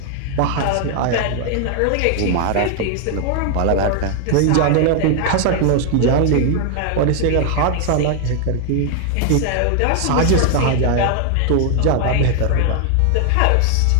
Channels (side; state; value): both; different; correlation 0.00